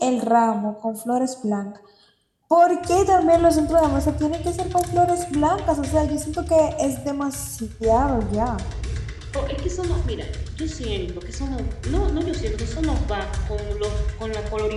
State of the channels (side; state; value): both; identical; correlation 1.00